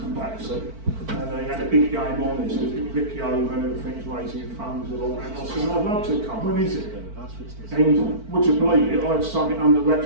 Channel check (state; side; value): late; left; 4.5 ms